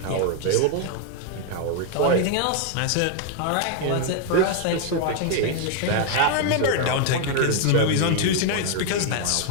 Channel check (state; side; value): different; both; correlation 0.00